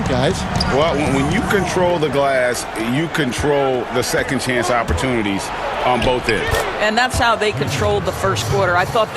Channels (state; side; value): identical; both; correlation 1.00